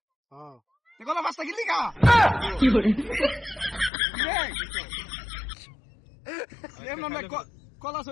কলা পাঁচটা কিনলি কা কলা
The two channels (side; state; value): right; drops out; at 3.9 s